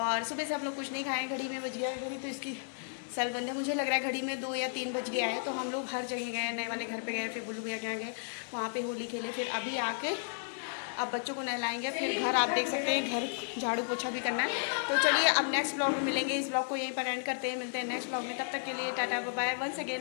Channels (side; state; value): right; silent; digital silence